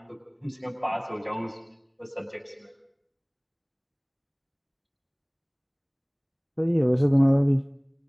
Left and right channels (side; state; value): both; identical; correlation 1.00